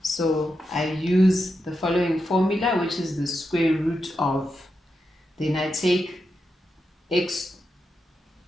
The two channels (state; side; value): normal; both; correlation 0.87